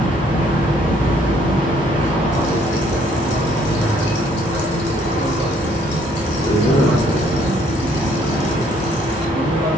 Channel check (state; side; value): normal; both; correlation 0.64